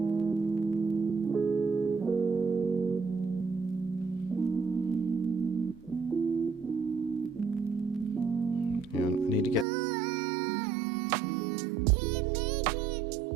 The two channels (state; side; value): drops out; left; at 9.7 s